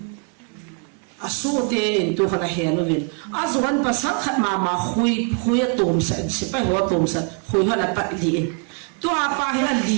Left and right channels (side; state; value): left; quieter; 38.4 dB